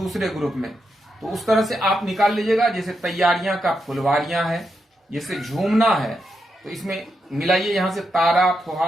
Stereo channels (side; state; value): both; normal; correlation 0.84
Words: ग्रुप में, तो उस तरह से आप निकाल लीजिएगा। जैसे तैयारियां का फुलवारियां है, जैसे झूमना है तो इसमें मिलाइए यहां से तारा,